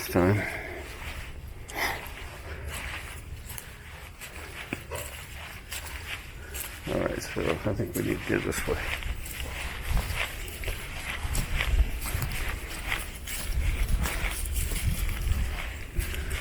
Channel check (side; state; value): both; identical; correlation 1.00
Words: time. Alright, so I think we need to go this way.